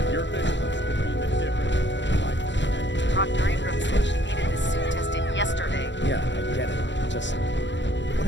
Your vigilance will mean the difference. Proctor Ingram said she needed this suit tested yesterday. Yeah, I get it. Just, what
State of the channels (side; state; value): right; late; 0.53 ms